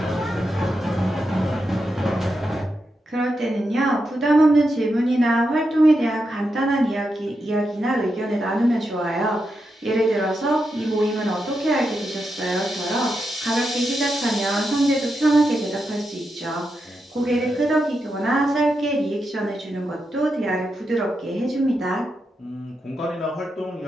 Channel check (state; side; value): normal; both; correlation 0.86